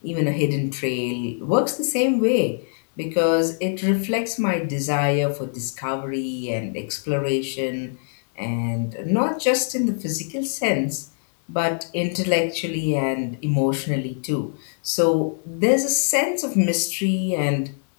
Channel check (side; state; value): right; silent; 63 dB below the other